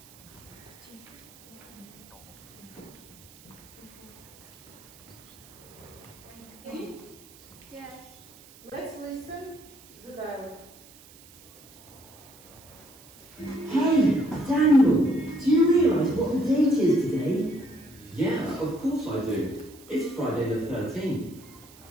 Daniel, do you realise what the date is today? Yeah, of course I do. It's Friday the 13th.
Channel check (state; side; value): noise; right; hiss, 23 dB below the sound